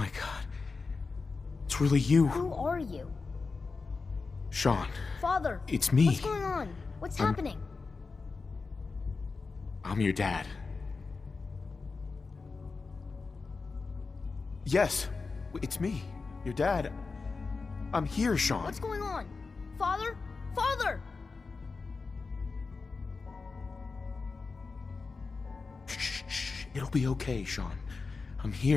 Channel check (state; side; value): quieter; right; 4.3 dB